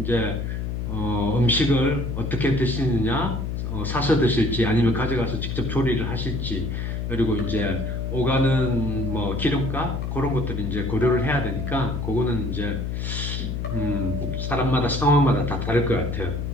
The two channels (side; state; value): left; noise; hum, 3 dB below the sound